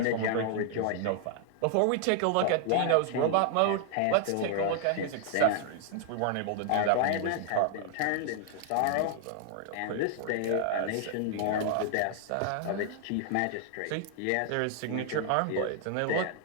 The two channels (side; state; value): both; different; correlation 0.00